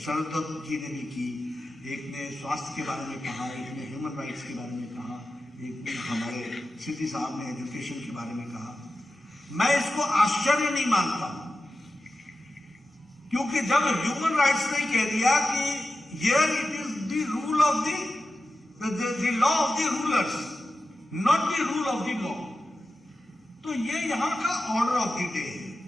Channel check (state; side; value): normal; both; correlation 0.92